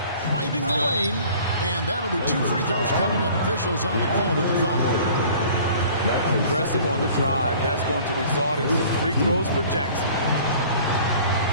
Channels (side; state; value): both; inverted; correlation -0.49